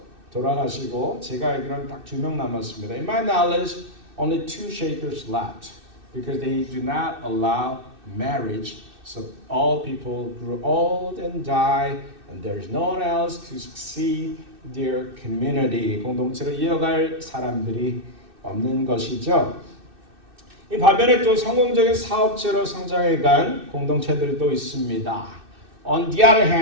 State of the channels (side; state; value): left; late; 2.6 ms